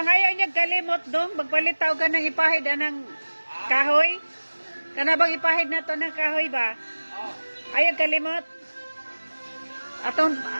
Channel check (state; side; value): inverted; both; correlation -1.00